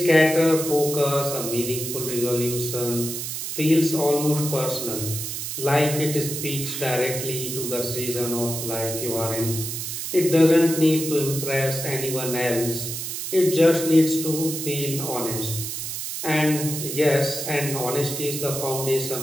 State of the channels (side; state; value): right; noise; hiss, 5 dB below the sound